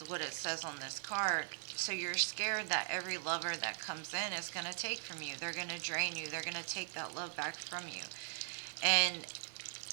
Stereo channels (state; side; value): silent; left; digital silence